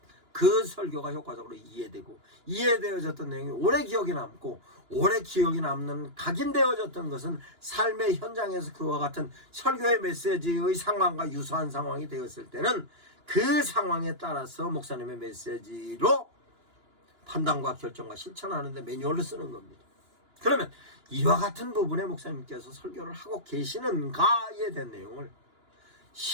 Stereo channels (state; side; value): late; left; 2.9 ms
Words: 그 설교가 효과적으로 이해되어졌던 내용이 오래 기억에 남고 오래 기억에 남는 각인되어졌던 것은 삶의 현장에서 그와 같은 설교의 메시지의 상황과 유사한 상황이 되었을 때는 그 상황에 따라서 목사님의 메시지로 판단과 결정과 실천하는 데 매뉴얼을 쓰는 겁니다. 그러면 이와 같은 부분에 목사님께서 설교를 하고 계시는가에 대한 내용을